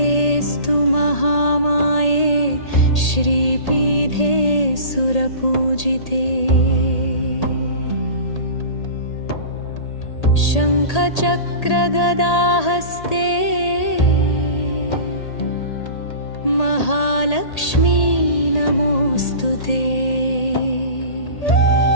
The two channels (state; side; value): late; right; 1.8 ms